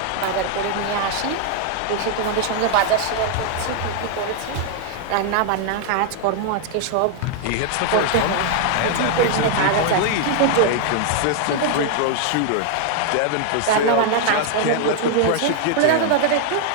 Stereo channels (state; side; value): different; both; correlation 0.00